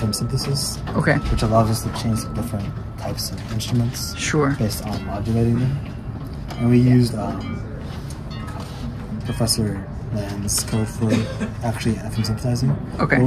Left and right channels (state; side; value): identical; both; correlation 1.00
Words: synthesis, which allows us to change the different types of instruments based on modulating them. And we used Professor Land's code for actually FM synthesizing. But